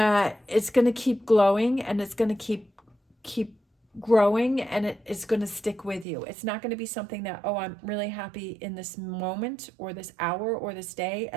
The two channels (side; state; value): left; drops out; at 6.1 s